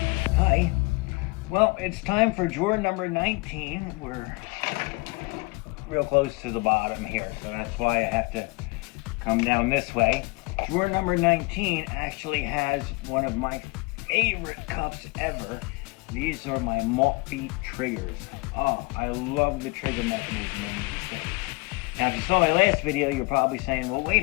Well, it's time for drawer number 19. We're real close to the bottom here, so that's why I have to come down this way. Drawer number 19 actually has one of my favorite cups ever. These are my Maltby triggers. Oh, I love the trigger mechanism in these things. Now, if you saw my last video, you're probably saying, well, wait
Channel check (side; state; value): right; quieter; 26.0 dB